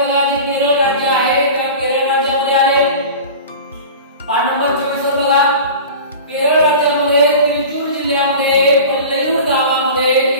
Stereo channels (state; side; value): inverted; both; correlation -0.36